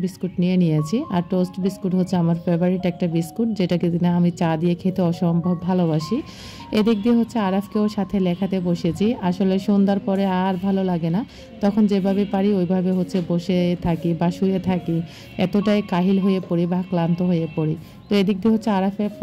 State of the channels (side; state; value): both; identical; correlation 1.00